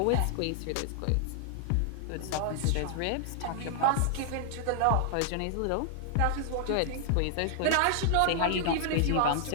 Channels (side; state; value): both; different; correlation -0.01